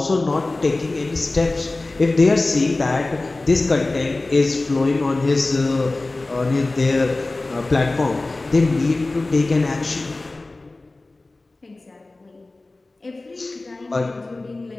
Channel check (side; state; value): right; quieter; 3.1 dB